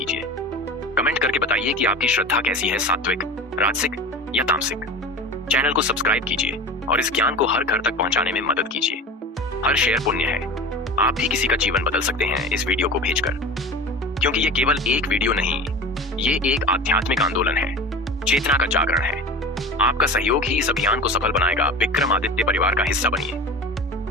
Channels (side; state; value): both; normal; correlation 0.33